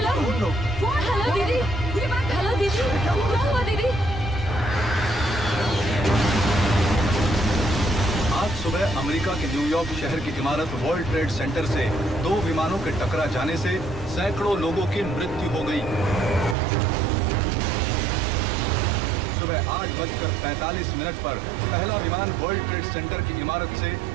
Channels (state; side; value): drops out; left; at 16.6 s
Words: phone phone. हेलो दीदी, हेलो दीदी, क्या हुआ दीदी? आज सुबह अमेरिका के न्यूयॉर्क शहर की इमारत वर्ल्ड ट्रेड सेंटर से 2 विमानों के टकरा जाने से सैकड़ों लोगों की मृत्यु हो गई। सुबह 8:45 पर पहला विमान वर्ल्ड ट्रेड सेंटर की इमारत से